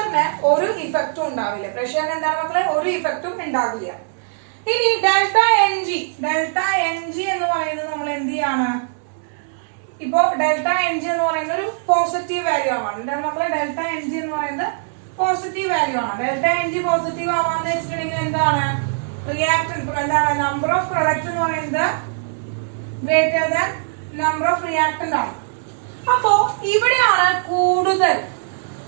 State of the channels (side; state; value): left; silent; 65 dB below the other